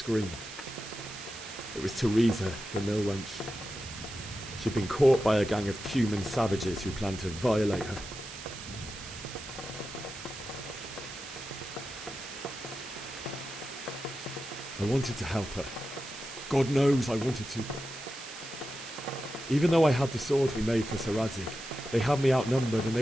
It was Teresa, the mill wench. She'd been caught by a gang of Cuman savages who planned to violate her. I wanted to help her. God knows I wanted to. Even though I had the sword we made for Sir Radzig, they had me outnumbered and they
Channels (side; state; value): right; noise; hiss, 12 dB below the sound